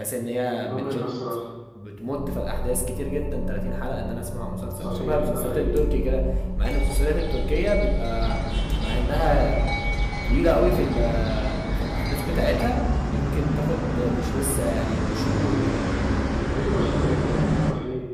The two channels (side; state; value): both; identical; correlation 1.00